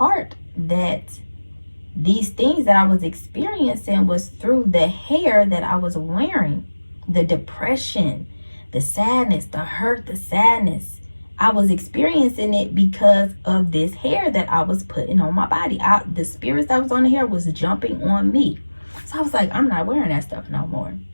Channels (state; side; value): inverted; both; correlation -1.00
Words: that these things that I was experiencing was through the hair that I was wearing. The depression, the sadness, the hurt, the sadness. I was experiencing it because of this hair that I was putting on my body. The spirits that was on the hair was jumping on me. So I was like, I'm not wearing that stuff no more.